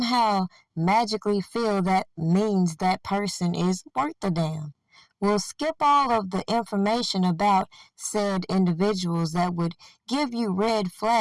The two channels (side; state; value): both; identical; correlation 1.00